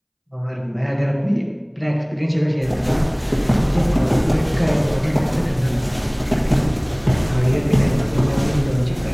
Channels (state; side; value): identical; both; correlation 1.00